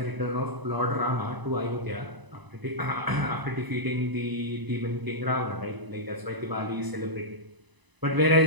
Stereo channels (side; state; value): left; late; 1.0 ms